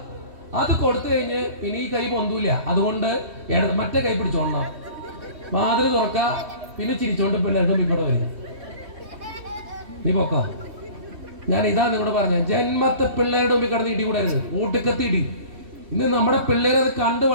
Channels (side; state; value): left; late; 3.2 ms